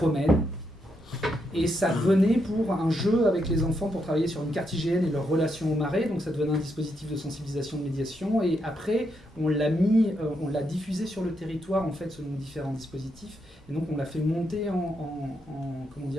Et ça venait pour un jeu avec les enfants pour travailler sur une carte IGN et leur relation au marais, donc ça devenait un dispositif de sensibilisation, de médiation, et après on l'a diffusé sur le territoire en fait selon différents dispositifs, et donc on l'a fait monter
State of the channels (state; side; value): normal; both; correlation 0.80